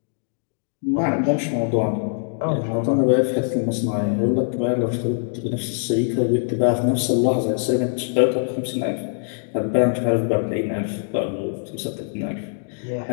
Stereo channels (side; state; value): right; silent; digital silence